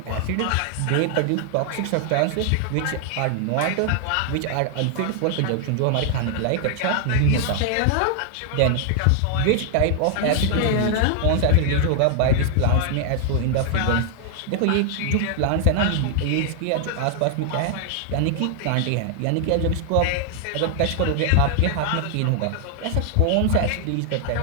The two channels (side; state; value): both; different; correlation 0.00